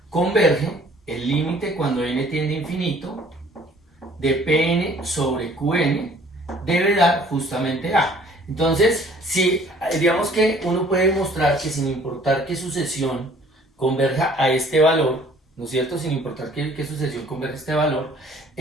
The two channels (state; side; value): normal; both; correlation 0.55